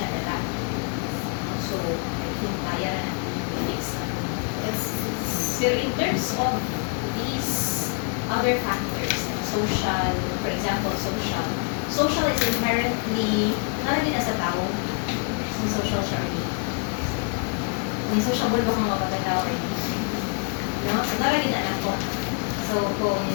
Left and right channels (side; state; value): right; quieter; 37.1 dB